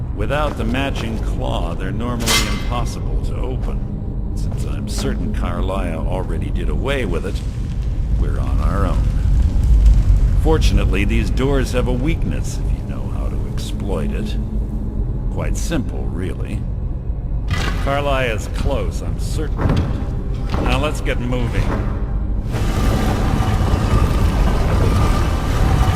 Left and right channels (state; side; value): identical; both; correlation 1.00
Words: Without the matching claw, they're normally impossible to open. Since I'm certain Carlia already did away with it, we're on our own. Fortunately, these doors have a weakness if you know how to exploit it. Quite simple, really. Carlia is close, I'm certain of it. Now let's get moving.